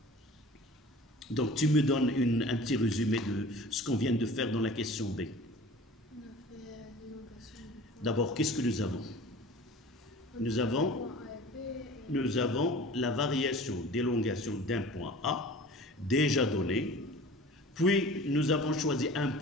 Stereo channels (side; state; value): both; normal; correlation 0.42